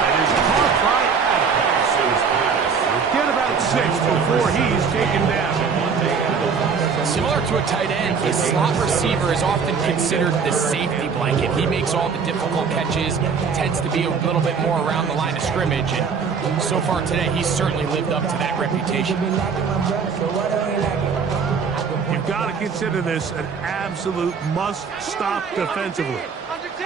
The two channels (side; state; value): left; quieter; 5.8 dB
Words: is caught by Adams. He'll get about 6 before he's taken down. Similar to a tight end, a slot receiver is often considered the safety blanket. He makes all the difficult catches, tends to be a little bit more around the line of scrimmage, and so far today, he's certainly lived up to that reputation. You've got to consider this an absolute must-stop defensively.